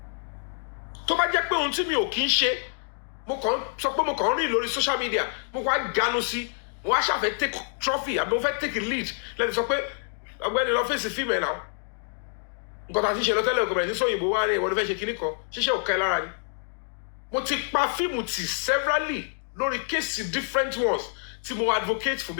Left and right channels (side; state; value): right; silent; 60 dB below the other